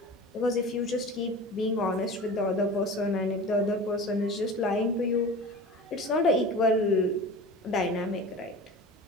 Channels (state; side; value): normal; both; correlation 0.34